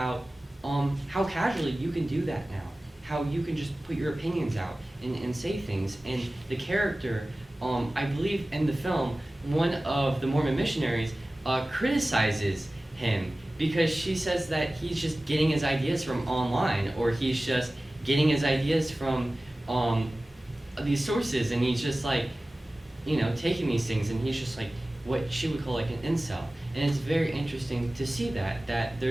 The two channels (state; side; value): normal; both; correlation 0.97